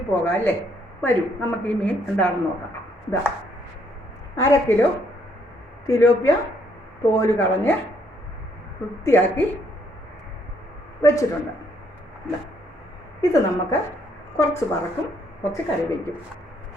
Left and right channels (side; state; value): both; normal; correlation 0.69